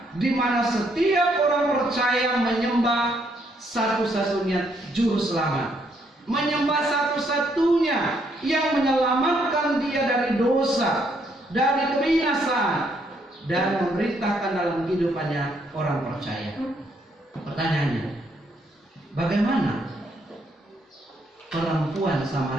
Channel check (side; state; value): both; normal; correlation 0.72